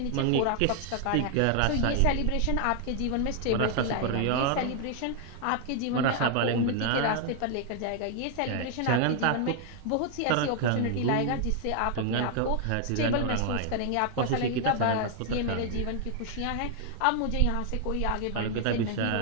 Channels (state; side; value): different; both; correlation 0.00